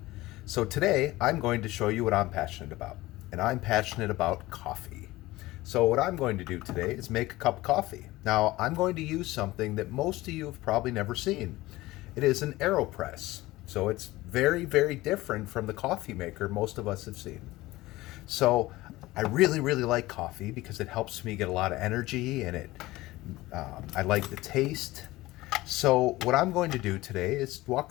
So today I'm going to show you what I'm passionate about, and I'm passionate about coffee. So what I'm going to do today is make a cup of coffee. Now I'm going to use something that most of you have probably never seen. It is an AeroPress. So it's very, very different from the coffee maker most of us have seen. So I really, really like coffee because it helps me get a lot of energy and I like the taste. So what I'm going to do today is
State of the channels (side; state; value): right; quieter; 18.6 dB